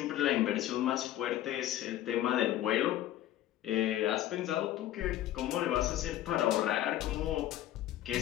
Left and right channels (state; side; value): quieter; right; 13.1 dB